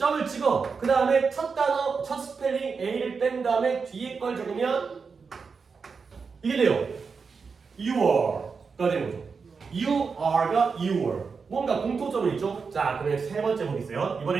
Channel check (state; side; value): quieter; left; 5.2 dB